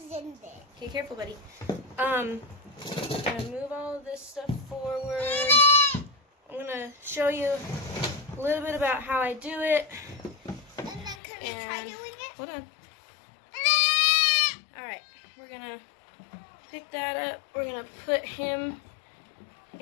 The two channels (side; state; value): right; drops out; at 11.2 s